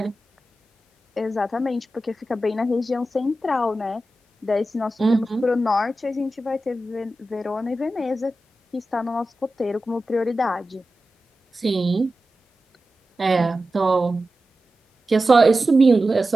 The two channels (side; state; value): both; normal; correlation 0.93